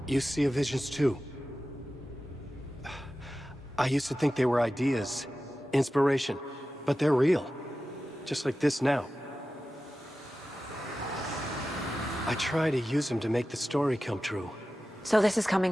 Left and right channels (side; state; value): both; normal; correlation 0.94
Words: You see visions too. I used to think they were ideas, inspiration, but they're real. Just like this now. I try to use them to make the story come true. So this is coming